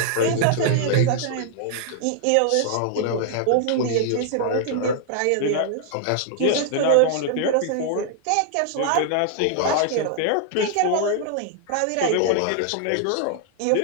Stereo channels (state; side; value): different; both; correlation -0.01